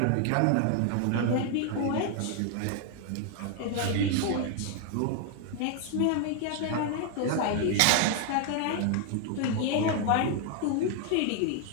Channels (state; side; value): different; both; correlation 0.00